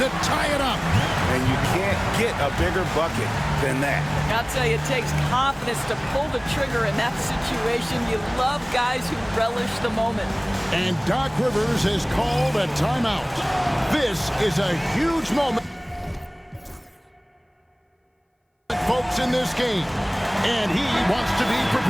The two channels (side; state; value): both; identical; correlation 1.00